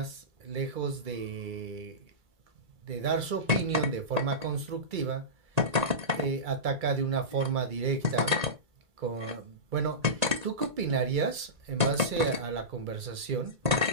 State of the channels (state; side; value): late; left; 2.3 ms